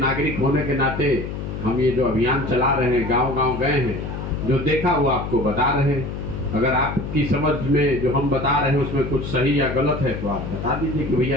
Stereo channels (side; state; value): left; noise; hum, 6 dB below the sound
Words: होने के नाते हम ये जो अभियान चला रहे हैं, गांव-गांव गए हैं, जो देखा वो आपको बता रहे हैं। अगर आपकी समझ में जो हम बता रहे हैं उसमें कुछ सही या गलत है तो आप बता दीजिए कि